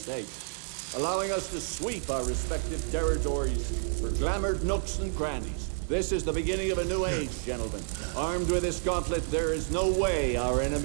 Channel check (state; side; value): silent; left; digital silence